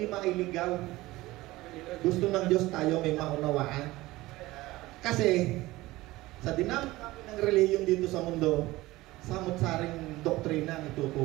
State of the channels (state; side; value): quieter; left; 18.8 dB